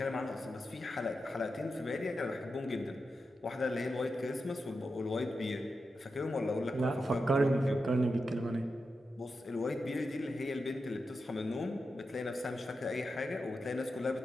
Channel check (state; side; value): normal; both; correlation 0.89